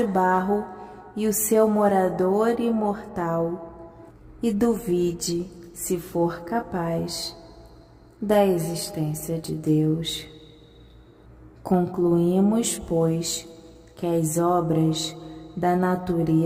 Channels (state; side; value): identical; both; correlation 1.00